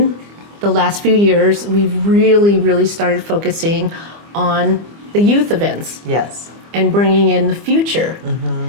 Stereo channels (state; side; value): late; left; 25 ms